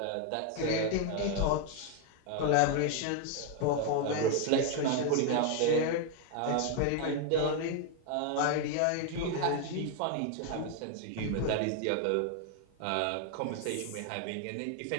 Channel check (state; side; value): different; both; correlation 0.01